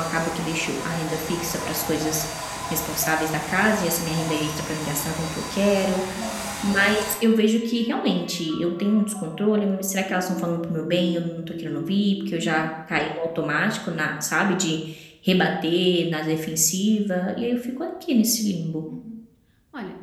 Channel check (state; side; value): identical; both; correlation 1.00